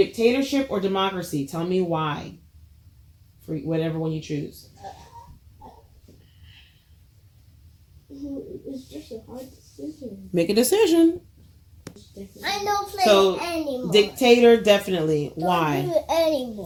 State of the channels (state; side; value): identical; both; correlation 1.00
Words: or democracy? Tell me why. For whatever one you choose. It's just a hard decision. Make a decision. I don't play So, anymore. Dictator, definitely. Don't Why? do it